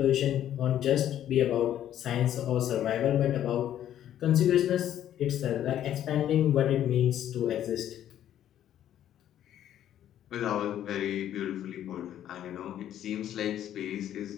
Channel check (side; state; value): right; quieter; 11.2 dB